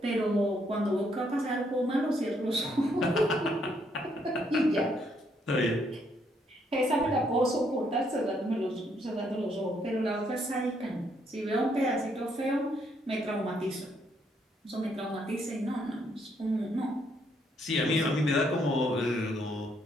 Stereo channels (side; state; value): both; normal; correlation 0.72